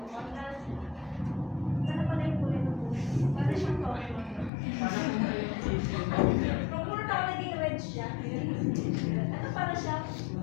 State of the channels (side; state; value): right; drops out; at 4.5 s